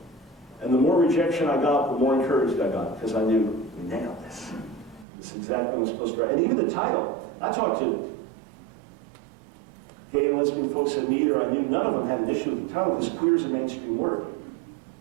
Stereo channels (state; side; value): drops out; left; at 5.1 s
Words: And the more rejection I got, the more encouraged I got, because I knew, we nailed this. This is exactly what I'm supposed to write. And even the title, I talked to gay and lesbian folks at Meter. I knew none of them had an issue with the title, because queer is a mainstream word.